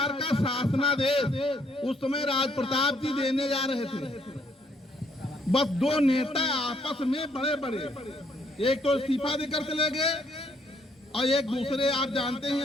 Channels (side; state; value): both; normal; correlation 0.69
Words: का शासनादेश उस समय राज प्रताप जी देने जा रहे थे। बस दो नेता आपस में बड़े बड़े, एक तो इस्तीफा देकर चले गए और एक दूसरे आप जानते हैं